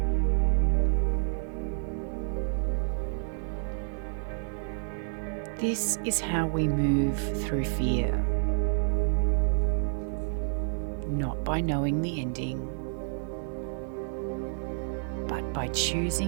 This is how we move through fear. Not by knowing the ending, but by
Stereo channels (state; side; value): silent; left; 55 dB below the other